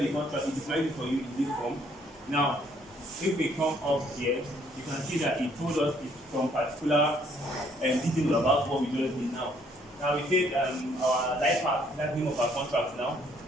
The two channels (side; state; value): both; normal; correlation 0.65